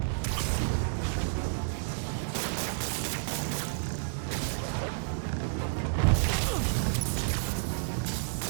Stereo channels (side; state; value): left; silent; digital silence